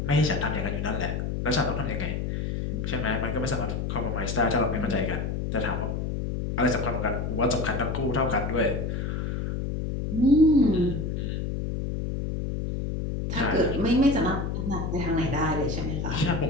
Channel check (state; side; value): noise; left; hum, 2 dB below the sound